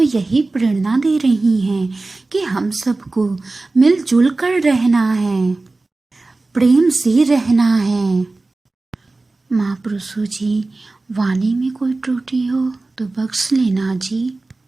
यही प्रेरणा दे रही हैं कि हम सबको मिलजुल कर रहना है, प्रेम से रहना है। महापुरुषों जी, वाणी में कोई त्रुटि हो तो बख्श लेना जी।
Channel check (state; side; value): quieter; left; 3.3 dB